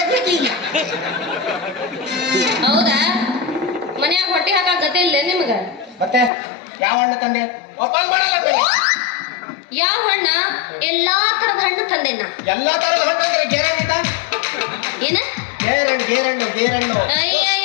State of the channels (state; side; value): drops out; right; at 6.3 s